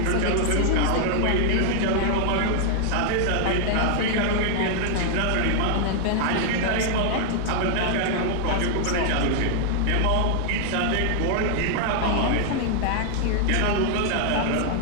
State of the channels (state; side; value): different; both; correlation 0.00